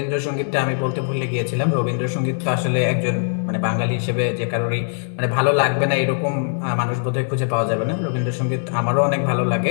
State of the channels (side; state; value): right; silent; digital silence